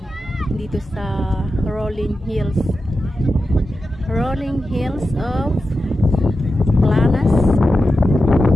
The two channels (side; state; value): both; normal; correlation 0.91